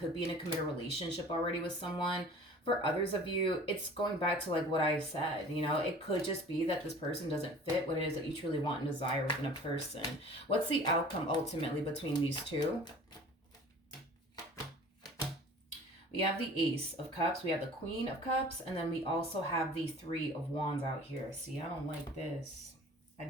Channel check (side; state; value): both; normal; correlation 0.45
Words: be in a committed relationship already with someone. For others of you, it's going back to like what I said. It could just be that this person doesn't fit what it is that you truly want and desire within a person. What's the outcome ultimately between these two? We have the Ace of Cups, we have the Queen of Cups, and then we also have the Three of Wands out here. See, I don't like this. I